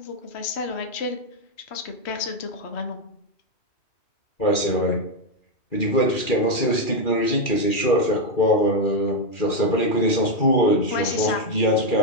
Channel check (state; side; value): late; right; 2.4 ms